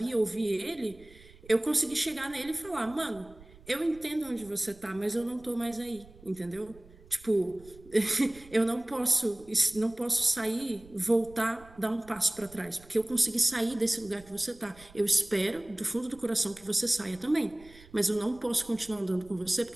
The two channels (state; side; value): noise; right; rumble, 23 dB below the sound